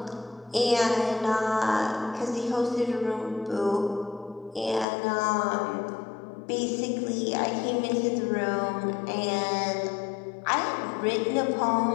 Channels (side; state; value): right; drops out; at 4.9 s